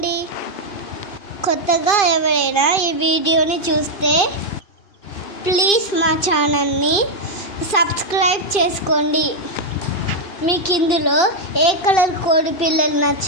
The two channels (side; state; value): right; late; 2.5 ms